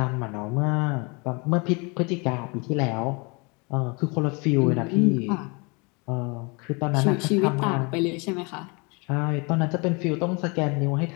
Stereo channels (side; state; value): right; quieter; 30.0 dB